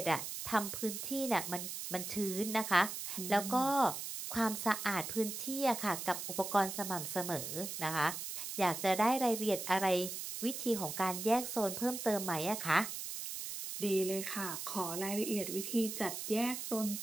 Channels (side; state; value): right; noise; hiss, 6 dB below the sound